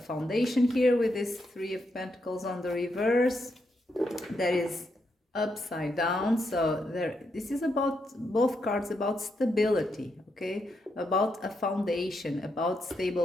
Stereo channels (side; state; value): both; normal; correlation 0.81